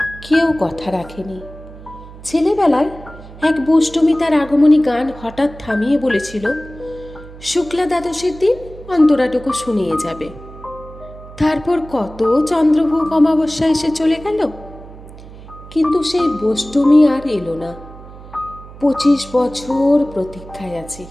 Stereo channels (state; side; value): noise; right; hum, 17 dB below the sound